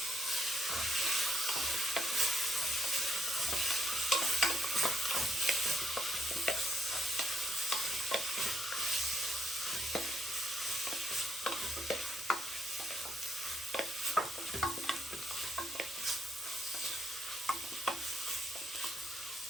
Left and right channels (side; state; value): both; normal; correlation 0.75